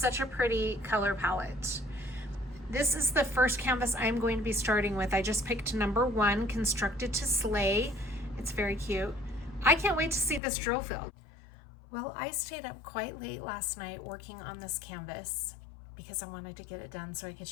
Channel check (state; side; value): drops out; right; at 10.4 s